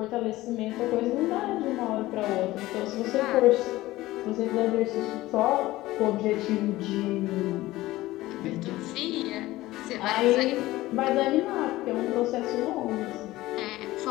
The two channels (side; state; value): right; quieter; 17.4 dB